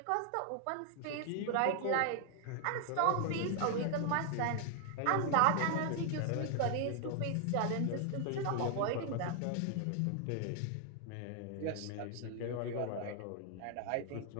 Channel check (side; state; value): both; different; correlation 0.00